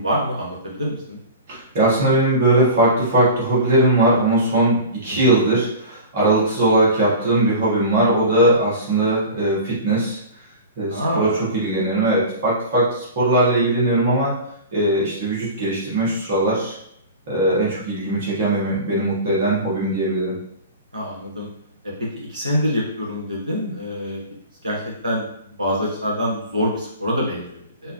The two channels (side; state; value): both; inverted; correlation -0.35